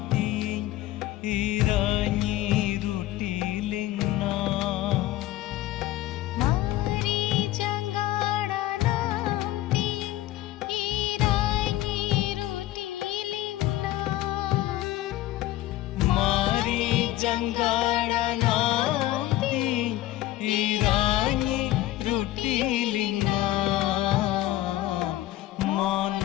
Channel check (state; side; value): quieter; right; 15.2 dB